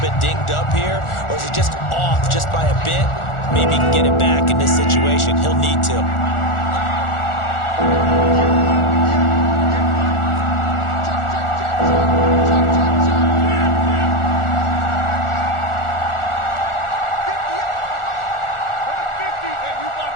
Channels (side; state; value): right; late; 1.4 ms